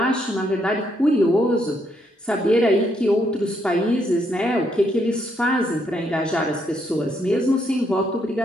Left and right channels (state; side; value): normal; both; correlation 0.74